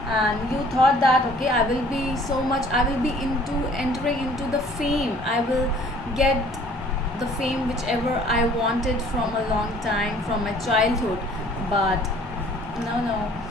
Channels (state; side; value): normal; both; correlation 0.54